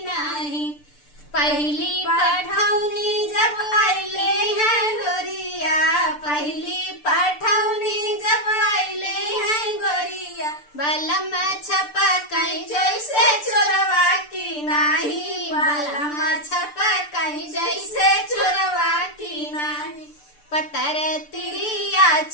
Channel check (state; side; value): late; right; 6.8 ms